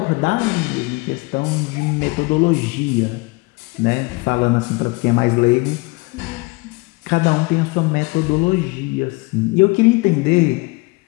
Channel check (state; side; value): quieter; right; 25.8 dB